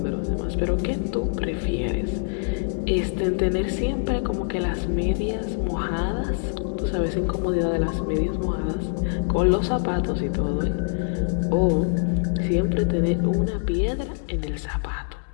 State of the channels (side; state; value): right; silent; 62 dB below the other